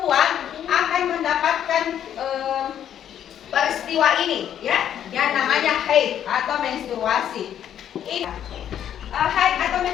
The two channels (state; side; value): quieter; right; 10.0 dB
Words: akan mendapatkan peristiwa ini ya yang namanya haid atau menstruasi. Ini haid atau